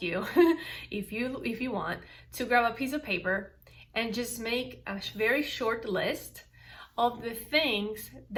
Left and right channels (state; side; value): identical; both; correlation 1.00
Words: you, if you want, to grab a piece of paper and just make a very short list of the things